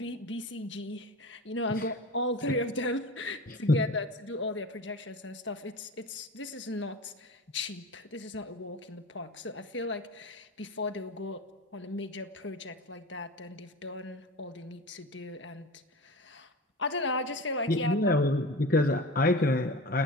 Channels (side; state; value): both; normal; correlation 0.32